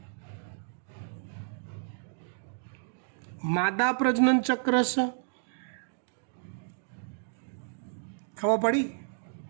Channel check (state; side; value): silent; left; digital silence